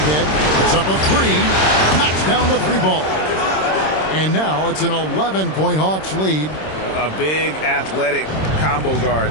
It's up a 3. Knocks down the 3-ball. And now it's an 11-point Hawks lead. A big athletic combo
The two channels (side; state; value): right; late; 26 ms